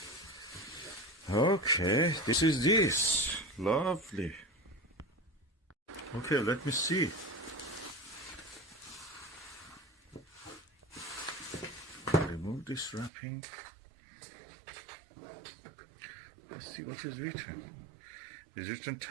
Okay, this is this. Lovely. Okay, let me see. Remove this wrapping. Let's see what is written. It's written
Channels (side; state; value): left; drops out; at 13.1 s